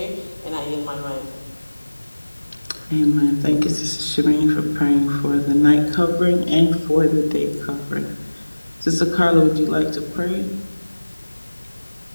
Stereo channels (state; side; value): inverted; both; correlation -1.00